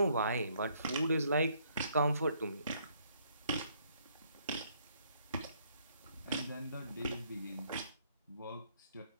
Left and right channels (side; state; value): both; inverted; correlation -0.67